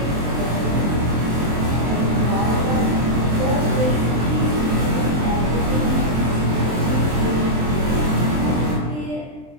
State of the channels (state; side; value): late; left; 23 ms